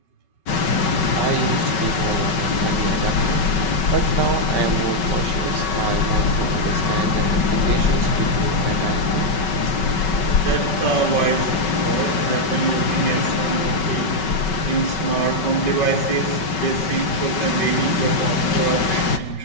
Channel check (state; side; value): late; right; 5.3 ms